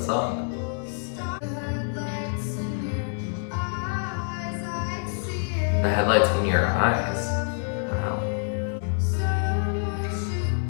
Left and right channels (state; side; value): silent; right; 61 dB below the other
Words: song. The headlights in your eyes. Wow.